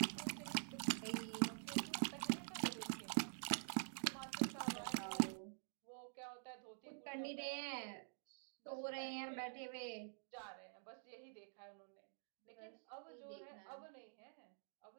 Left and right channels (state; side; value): silent; left; digital silence